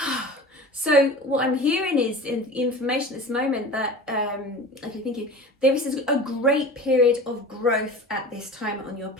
so what I'm hearing is information at this moment that, okay, thank you. There is a great period of growth at this time on your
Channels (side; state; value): both; normal; correlation 0.36